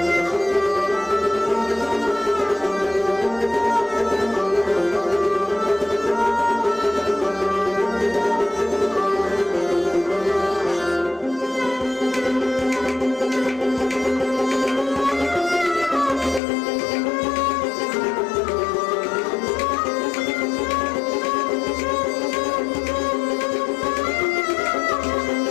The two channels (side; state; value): right; drops out; at 16.4 s